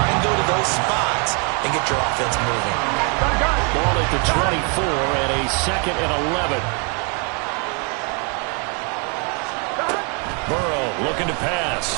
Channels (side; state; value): left; quieter; 36.3 dB